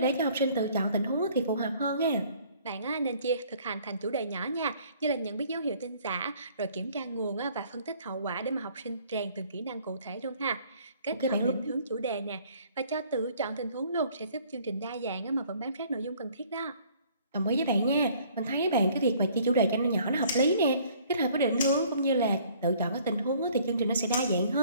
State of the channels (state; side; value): inverted; both; correlation -0.57